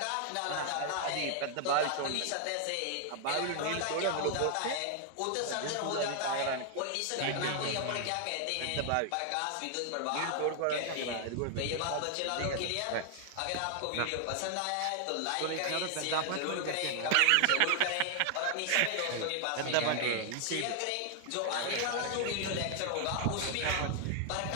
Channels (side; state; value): both; different; correlation 0.00